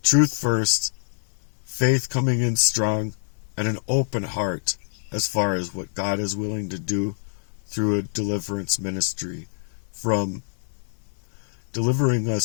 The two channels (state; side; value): silent; right; digital silence